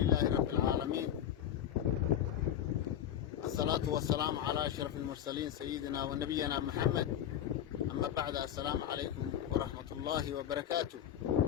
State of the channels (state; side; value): quieter; right; 10.3 dB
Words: رب العالمين، الصلاة والسلام على أشرف المرسلين سيدنا ونبينا محمد. أما بعد، السلام عليكم ورحمة الله وبركاته.